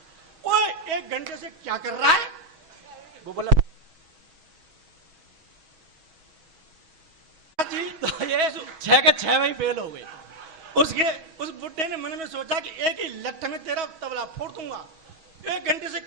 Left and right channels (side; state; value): left; late; 6.2 ms